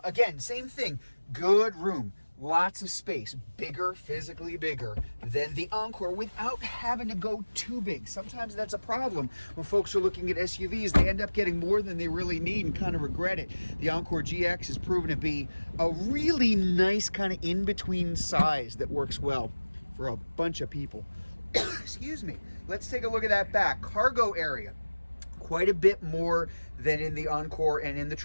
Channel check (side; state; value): both; inverted; correlation -1.00